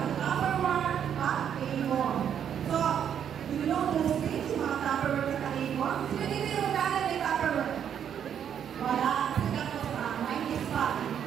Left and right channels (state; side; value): quieter; left; 8.8 dB